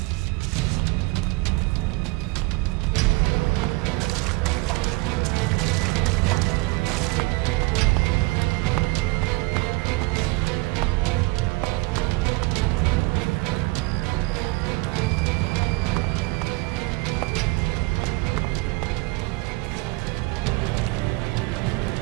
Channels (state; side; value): quieter; left; 24.4 dB